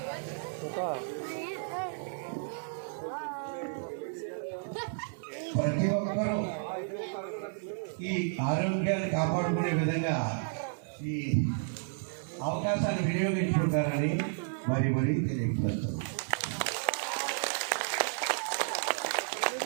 ప్రతి ఒక్కరూ ఈ ఆరోగ్యాన్ని కాపాడుకునే విధంగా ఈ అవకాశాన్ని వినియోగించుకుంటారని మరీ తెలియపరుస్తాను.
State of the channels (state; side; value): silent; left; digital silence